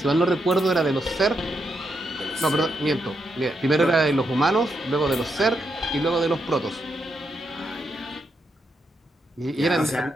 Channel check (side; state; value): both; normal; correlation 0.82